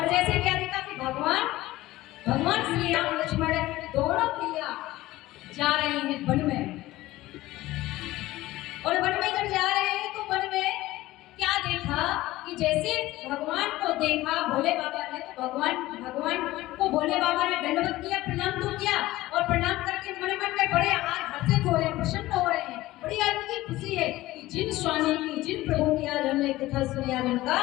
जैसे क्या देखा कि भगवान श्री राम लक्ष्मण दोनों प्रिया जा रहे हैं वन में। और वन में जब जा रहे हैं तो वन में क्या देखा कि जैसे भगवान को देखा भोले बाबा ने, तो भगवान को भोले बाबा ने दंडवत किया, प्रणाम तो किया। और प्रणाम करके मन में बड़े हर्षित हो रहे हैं, प्रसन्न हो रहे हैं। बड़ी आज की खुशी है कि जिन स्वामी की, जिन प्रभु की आज हमने कथा सुनी, आज उनका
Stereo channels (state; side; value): quieter; right; 17.2 dB